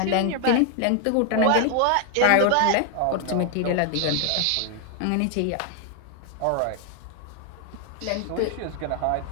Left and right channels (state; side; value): different; both; correlation 0.00